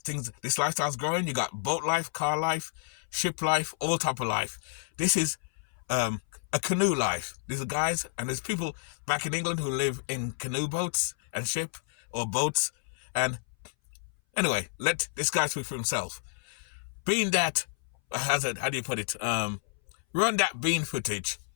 This lifestyle's growing. You got boat life, car life, ship life, all type of life. This is a canoe life. There's guys and there's people back in England who live in canoe boats and ship or boats. And anyway, let this guy speak for himself. Being that, how do you put it? Run that bean footage.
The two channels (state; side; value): silent; right; 58 dB below the other